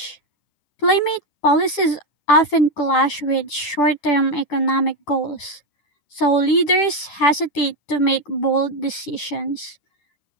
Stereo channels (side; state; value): right; late; 10 ms